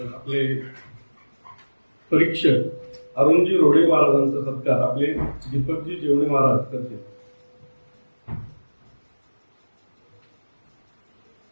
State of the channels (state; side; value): inverted; both; correlation -1.00